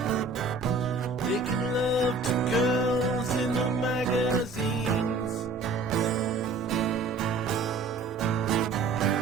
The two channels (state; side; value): quieter; left; 3.8 dB